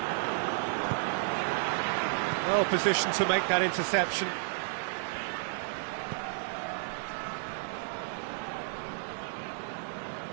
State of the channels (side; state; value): left; silent; digital silence